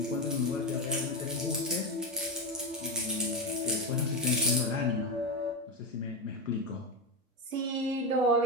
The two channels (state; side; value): normal; both; correlation 0.12